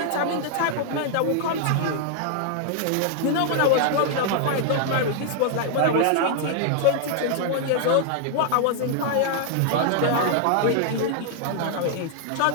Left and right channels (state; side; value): different; both; correlation -0.01